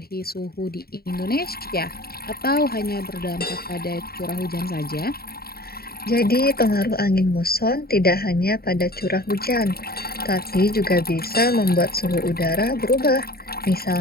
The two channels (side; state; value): right; late; 0.45 ms